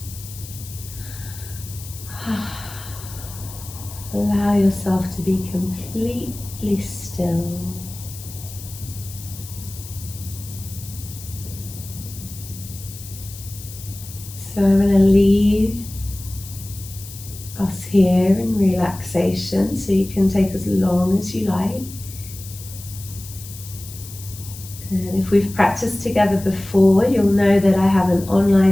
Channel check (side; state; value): left; noise; hiss, 15 dB below the sound